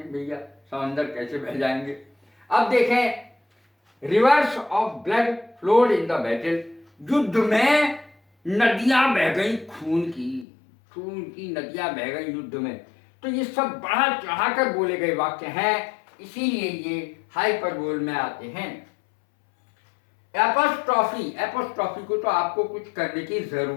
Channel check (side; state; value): right; drops out; at 10.5 s